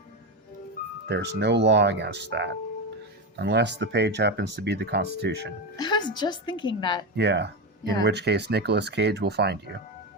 There's no law against that. Unless the page happens to be the Constitution. I was just thinking that. Yeah. In which case, Nicolas Cage will find you.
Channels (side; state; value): both; normal; correlation 0.15